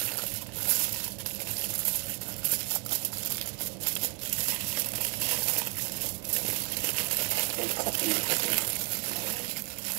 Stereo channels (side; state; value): left; quieter; 32.9 dB